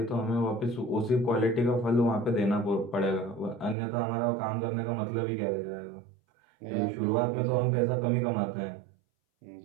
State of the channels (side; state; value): left; drops out; at 3.8 s